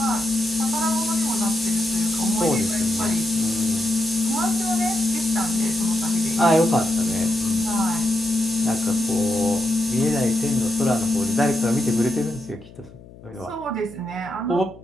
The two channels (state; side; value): noise; left; hum, 20 dB below the sound